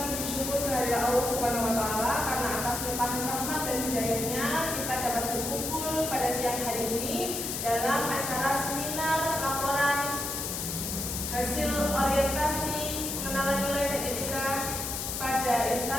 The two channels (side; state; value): left; noise; hiss, 3 dB below the sound